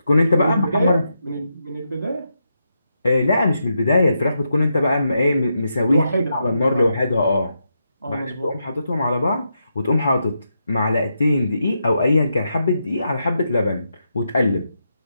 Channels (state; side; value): inverted; both; correlation -0.84